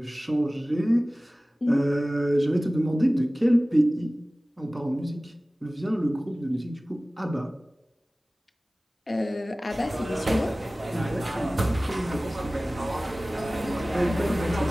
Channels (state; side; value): normal; both; correlation 0.98